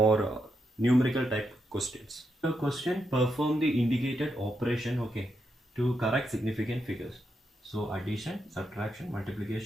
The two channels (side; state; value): both; normal; correlation 0.83